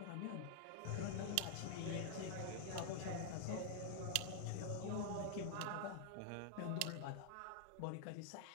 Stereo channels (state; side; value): different; both; correlation 0.00